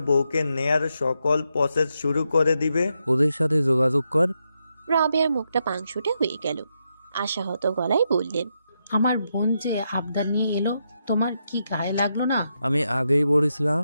বউকে নেয়ার সকল প্রসেস শুরু করে দিবে। ওদের সাথে যোগাযোগ কর। রাবেয়ার মুখটা পাংশুটে হয়ে গেল, আশাহত গলায় বললেন, আমার বোন যে আবদার নিয়ে এলো, তোমার কি গায়ে লাগলো না? আমি আগেই বলেছিলাম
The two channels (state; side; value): inverted; both; correlation -0.83